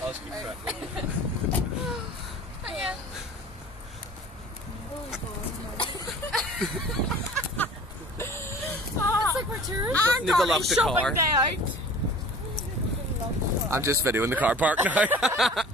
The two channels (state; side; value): normal; both; correlation 0.44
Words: I'll just keep track. Yeah. It's like we're tourists. Need to lock the car. Day out. I'm just videoing the car park now.